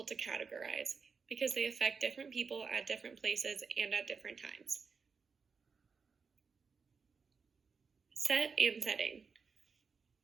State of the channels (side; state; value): left; quieter; 5.3 dB